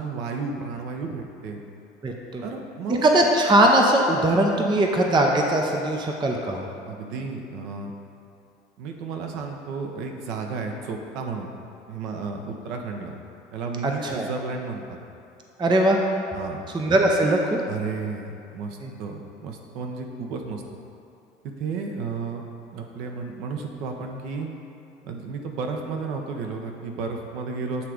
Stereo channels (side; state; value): both; normal; correlation 0.48